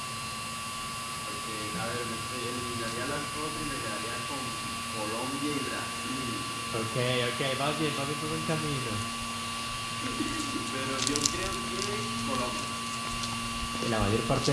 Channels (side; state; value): both; identical; correlation 1.00